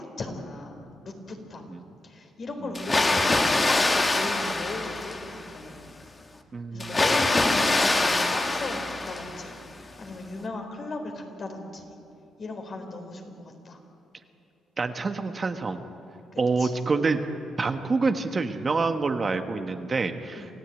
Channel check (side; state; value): both; normal; correlation 0.89